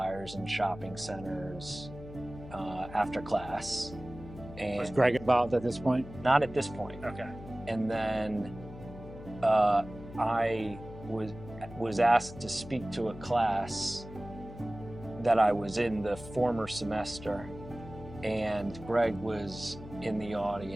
in shopping centers after class. And Was Greg involved at this point? not at this point. Okay. And then I was asked to speak to a class that I was in the former semester, and Greg was in the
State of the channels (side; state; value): left; noise; hum, 14 dB below the sound